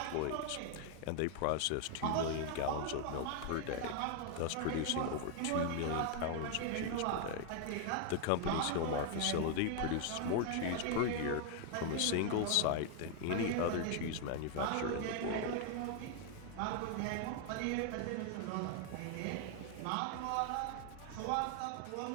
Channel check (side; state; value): both; different; correlation 0.00